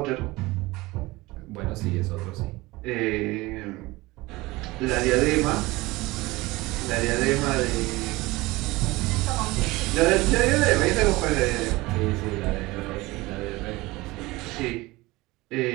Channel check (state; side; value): quieter; left; 20.9 dB